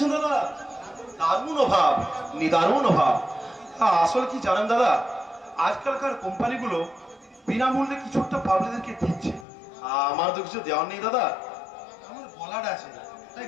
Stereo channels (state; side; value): drops out; right; at 9.5 s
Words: দাদা? দারুণ অভাব, নিদারুণ অভাব। আসলে কি জানেন দাদা, আজকালকার কোম্পানিগুলো বিনামূল্যে কিছু একটা পাবলিকদেরকে দিচ্ছে। আমার তো কিছু দেওয়ার নেই দাদা, আমার গলাটা আছে, তাই